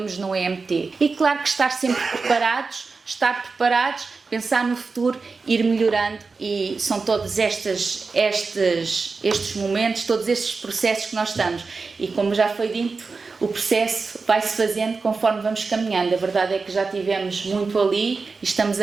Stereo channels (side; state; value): left; quieter; 4.4 dB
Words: no EMT. E claro que estar preparados, pensar no futuro, ir melhorando, e são todos estes momentos, todos estes processos que nós estamos. E como já foi dito, o processo vai-se fazendo conforme vamos caminhando. A verdade é que já tivemos muito ali e estamos